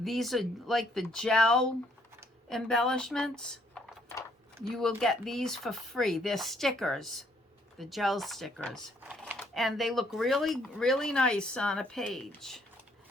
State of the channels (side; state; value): both; normal; correlation 0.68